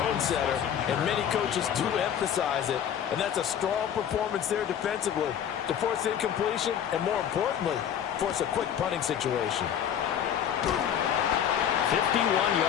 setter, and many coaches do emphasize it. And that's a strong performance there defensively to force incompletion and, more importantly, force a quick punting situation. 51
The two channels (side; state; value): right; quieter; 9.2 dB